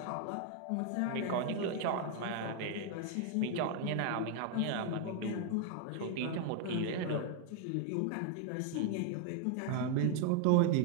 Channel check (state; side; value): different; both; correlation 0.00